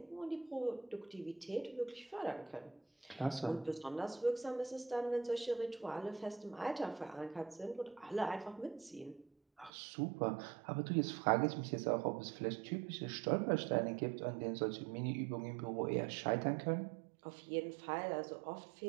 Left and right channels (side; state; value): left; drops out; at 9.7 s